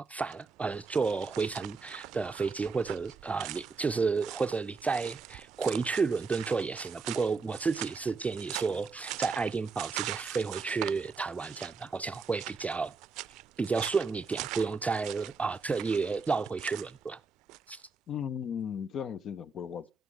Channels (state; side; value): quieter; left; 4.2 dB